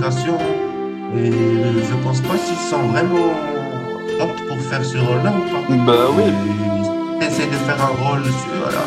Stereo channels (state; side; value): identical; both; correlation 1.00